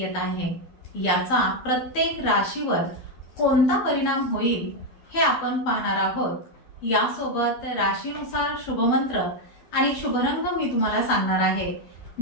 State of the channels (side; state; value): right; late; 12 ms